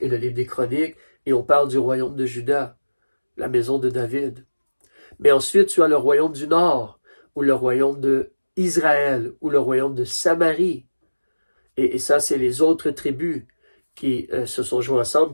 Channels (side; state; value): both; inverted; correlation -1.00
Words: et le livre des chroniques, et on parle du royaume de Juda, la maison de David. Mais ensuite, tu as le royaume du nord, ou le royaume de Israël, ou le royaume de Samarie. Et ça, c'est les autres tribus qui se sont joints ensemble,